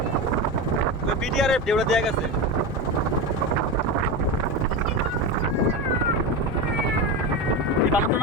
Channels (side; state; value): both; normal; correlation 0.19